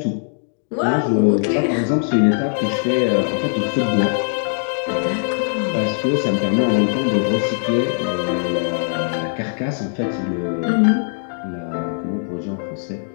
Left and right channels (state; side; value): silent; right; digital silence